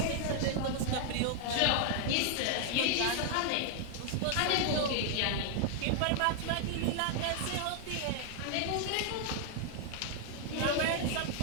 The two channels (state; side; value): different; both; correlation 0.00